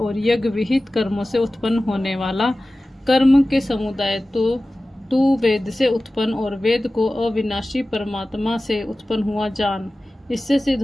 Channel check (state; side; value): normal; both; correlation 0.96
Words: यज्ञ विहित कर्मों से उत्पन्न होने वाला कर्म के समुदाय तो तू वेद से उत्पन्न और वेद को अविनाशी परमात्मा से उत्पन्न हुआ जान। इससे सिद्ध